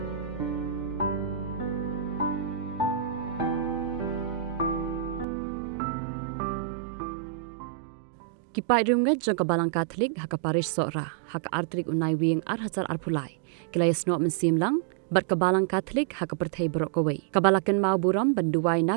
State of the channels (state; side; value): drops out; left; at 5.2 s